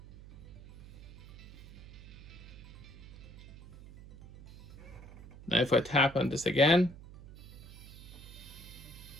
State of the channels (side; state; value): right; noise; hum, 16 dB below the sound